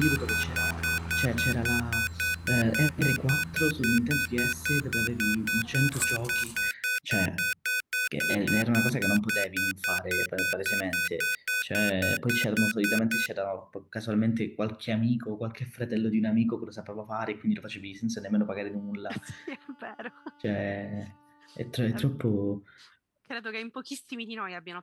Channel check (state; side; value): identical; both; correlation 1.00